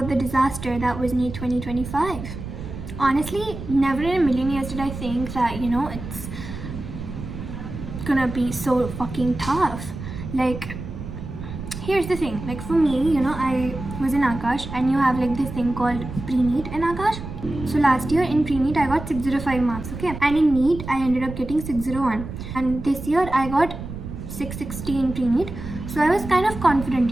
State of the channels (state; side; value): noise; right; rumble, 9 dB below the sound